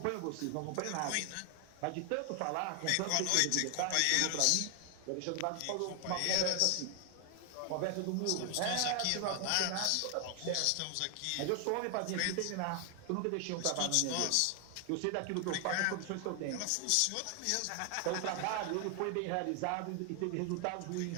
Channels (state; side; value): different; both; correlation 0.00